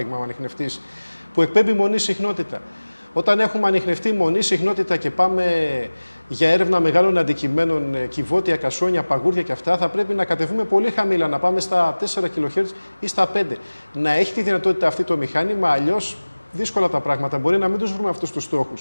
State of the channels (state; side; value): inverted; both; correlation -1.00